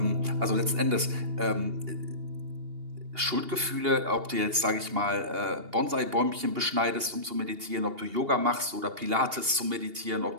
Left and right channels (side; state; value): left; late; 2.8 ms